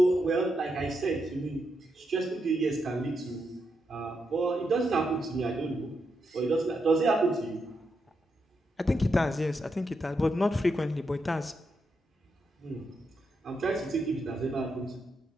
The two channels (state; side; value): normal; both; correlation 0.83